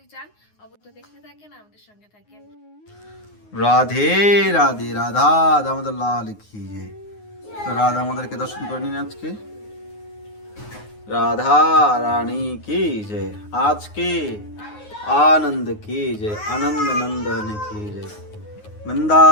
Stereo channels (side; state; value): right; late; 9.5 ms